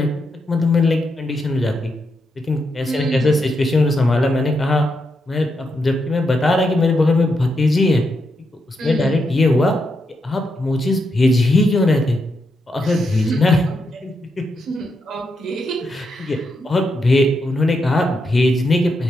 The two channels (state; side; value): normal; both; correlation 0.83